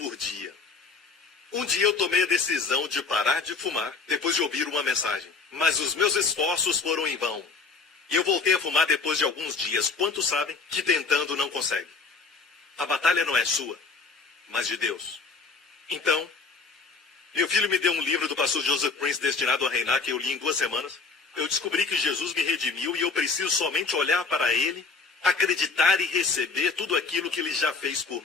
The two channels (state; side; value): quieter; right; 4.5 dB